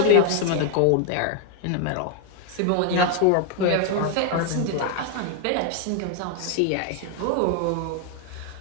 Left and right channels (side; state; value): both; different; correlation 0.00